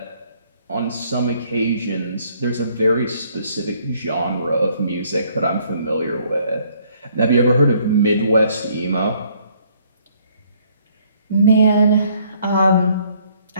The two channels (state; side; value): inverted; both; correlation -0.64